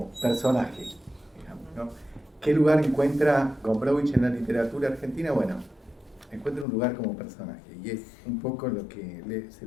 personaje, digamos, ¿no? ¿Qué lugar encuentra Gombrowicz en la literatura argentina? Bueno, encuentra un lugar como personaje, y es un poco lo que se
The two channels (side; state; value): right; drops out; at 6.7 s